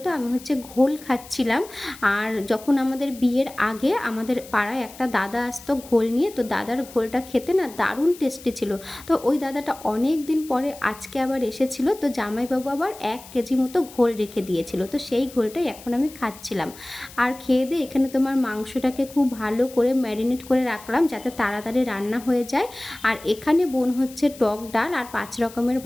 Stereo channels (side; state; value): left; noise; hiss, 19 dB below the sound